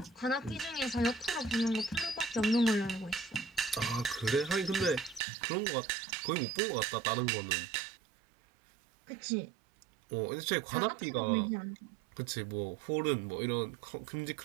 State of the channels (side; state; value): left; drops out; at 5.2 s